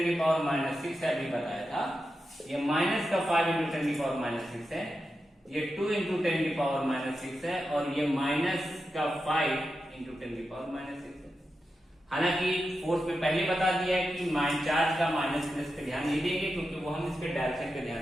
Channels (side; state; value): both; normal; correlation 0.89